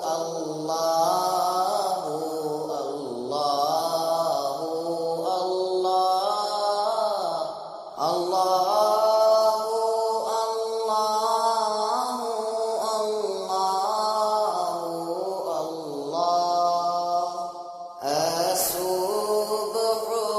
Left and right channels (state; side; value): identical; both; correlation 1.00